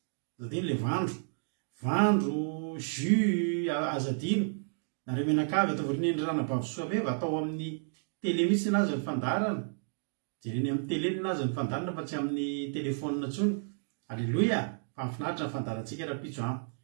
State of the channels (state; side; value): silent; left; digital silence